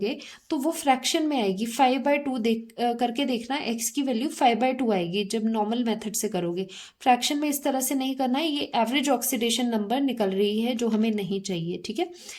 तो वो फ्रैक्शन में आएगी, 5/2 करके देखना, x की वैल्यू 5/2 आएगी जब नॉर्मल मेथड से करोगे। फ्रैक्शन में इस तरह से नहीं करना है, ये एवरेज ऑक्सीडेशन नंबर निकल रही है जो हमें नहीं चाहिए। ठीक है,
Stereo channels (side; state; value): both; identical; correlation 1.00